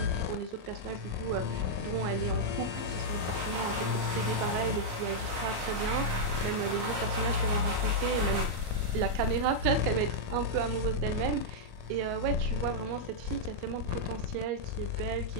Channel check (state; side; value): late; left; 31 ms